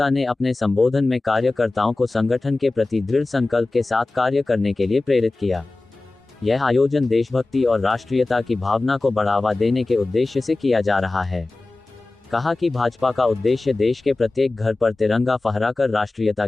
ने अपने संबोधन में कार्यकर्ताओं को संगठन के प्रति दृढ़ संकल्प के साथ कार्य करने के लिए प्रेरित किया। यह आयोजन देशभक्ति और राष्ट्रीयता की भावना को बढ़ावा देने के उद्देश्य से किया जा रहा है। कहा कि भाजपा का उद्देश्य देश के प्रत्येक घर पर तिरंगा फहराकर राष्ट्रीयता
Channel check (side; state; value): right; quieter; 3.2 dB